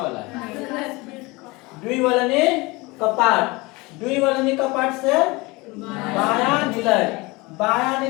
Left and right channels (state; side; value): quieter; right; 24.0 dB